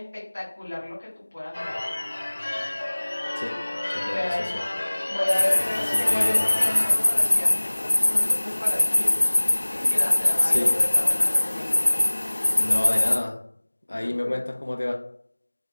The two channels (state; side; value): inverted; both; correlation -1.00